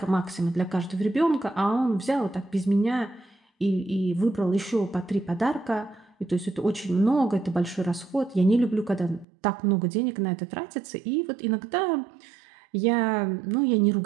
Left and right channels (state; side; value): drops out; left; at 9.2 s